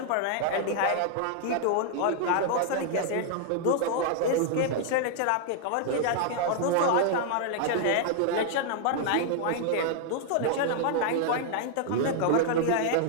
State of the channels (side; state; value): both; different; correlation 0.00